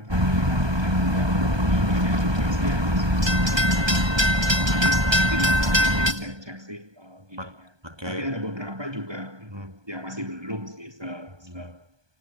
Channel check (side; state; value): left; late; 1.2 ms